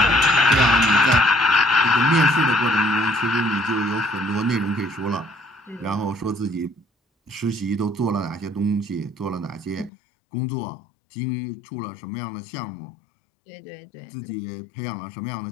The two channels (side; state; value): right; drops out; at 9.9 s